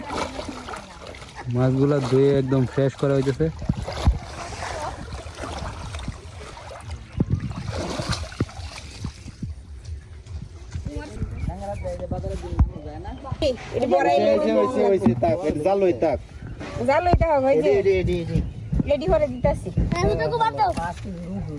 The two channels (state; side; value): identical; both; correlation 1.00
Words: মাছগুলা ধুয়ে একদম ফ্রেশ করা হইতেছে এটা বড় হইছে তাক এটা জাল লই তাক জাল লইতে হবে এই যে এডি রেডি করে দিতাছি আমি তো বাদ দাও